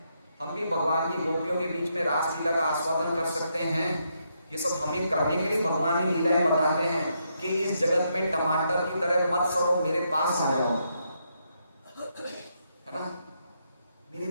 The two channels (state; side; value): inverted; both; correlation -0.79